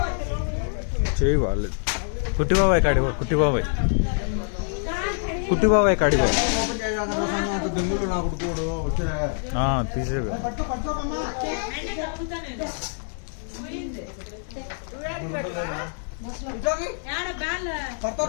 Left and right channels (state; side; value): silent; right; digital silence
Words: చేయి వాళ్ళు కుట్టి బాబాయ్ కాడిగో, కుట్టి బాబాయ్ కాడిగో తీసేవి.